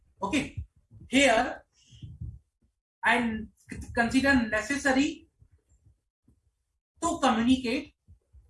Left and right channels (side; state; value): both; identical; correlation 1.00